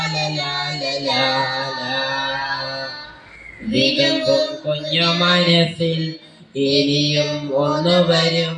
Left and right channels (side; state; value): both; identical; correlation 1.00